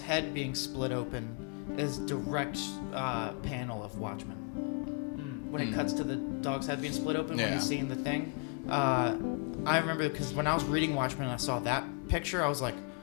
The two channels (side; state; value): right; quieter; 33.7 dB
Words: head being split open is direct panel of Watchmen. When it cuts to the dog's head being split open when Yeah. he's seeing the thing, I remember because when I was reading Watchmen and I saw that picture, I was like,